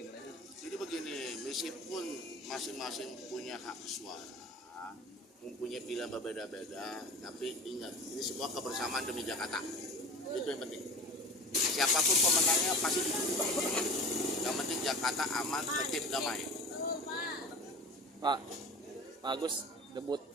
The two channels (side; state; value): both; normal; correlation 0.37